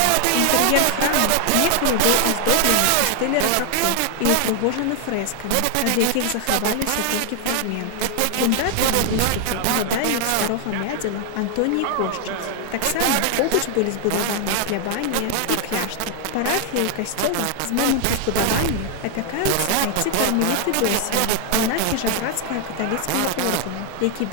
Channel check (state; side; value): different; both; correlation 0.00